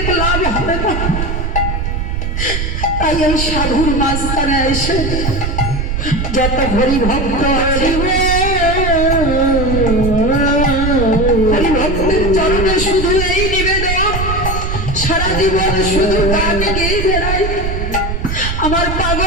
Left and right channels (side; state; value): right; noise; rumble, 2 dB below the sound